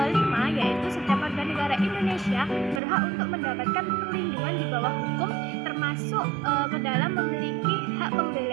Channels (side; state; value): left; drops out; at 2.8 s